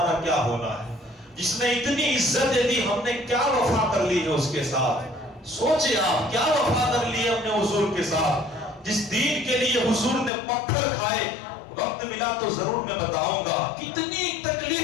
کیا ہونا ہے۔ جس نے اتنی عزت دی ہم نے کیا وفا کر لی ہے اس کے ساتھ؟ سوچے آپ کیا وفا کر لی ہے اپنے حضور کے ساتھ، جس دین کے لیے حضور نے پتھر کھائے۔ وقت ملا تو ضرور میں بتاؤں گا کتنی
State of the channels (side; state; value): right; drops out; at 10.3 s